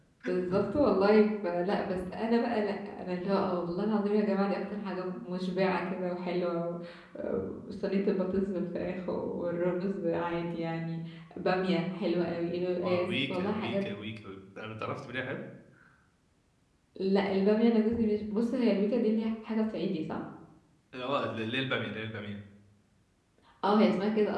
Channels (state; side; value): identical; both; correlation 1.00